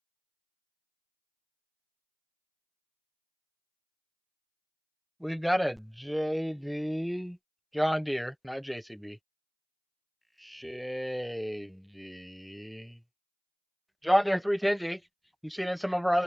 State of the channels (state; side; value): identical; both; correlation 1.00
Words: We've got a JD John Deere, not JCB. JD. John Deere 310G. You've seen it in some of our